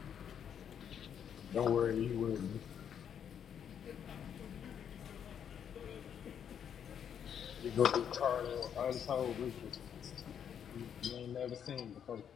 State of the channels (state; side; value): quieter; right; 8.5 dB